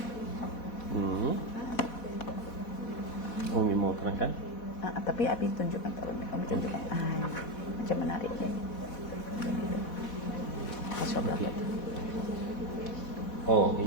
Umi mau terangkan? Tapi Abi tunjukkan, Umi tunjukkan. Macam menarik ya.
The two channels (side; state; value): right; late; 4.1 ms